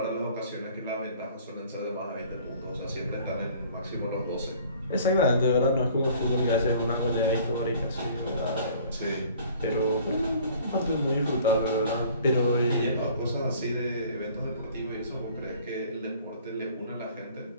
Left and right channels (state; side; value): inverted; both; correlation -0.51